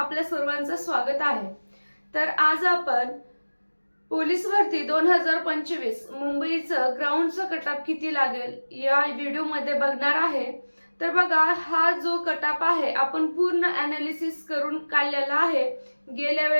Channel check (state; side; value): inverted; both; correlation -1.00